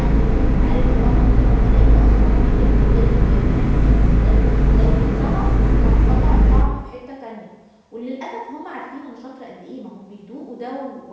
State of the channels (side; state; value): both; identical; correlation 1.00